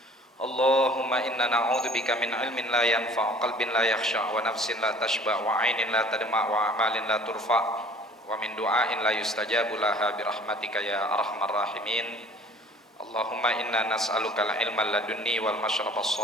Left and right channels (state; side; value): normal; both; correlation 0.51